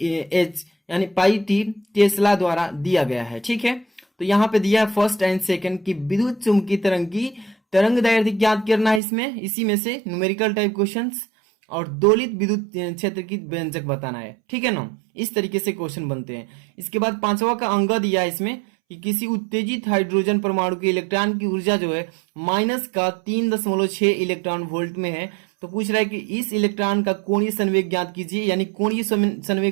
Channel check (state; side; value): drops out; left; at 9.0 s